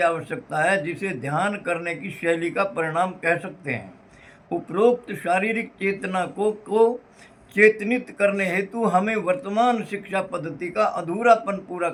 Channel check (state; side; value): identical; both; correlation 1.00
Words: है, जिसे ध्यान करने की शैली का परिणाम कह सकते हैं। उपरोक्त शारीरिक चेतना को चेतनित करने हेतु हमें वर्तमान शिक्षा पद्धति का अधूरापन पूरा